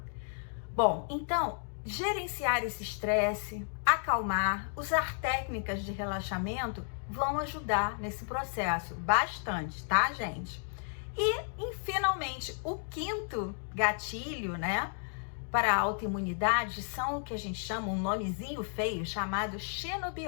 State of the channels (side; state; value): right; silent; digital silence